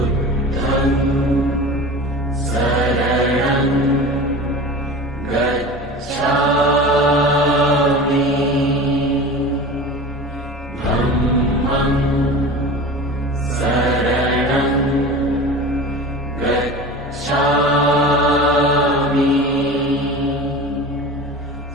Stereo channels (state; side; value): normal; both; correlation 0.34